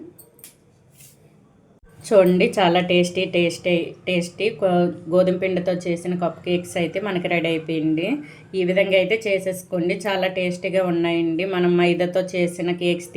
చూడండి, చాలా టేస్టీ గోధుమ పిండితో చేసిన కప్ కేక్స్ అయితే మనకి రెడీ అయిపోయింది. ఈ విధంగా అయితే చేసేసుకోండి. చాలా టేస్టీగా ఉన్నాయండి. మనం మైదాతో చేసిన కేక్స్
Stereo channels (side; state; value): both; identical; correlation 1.00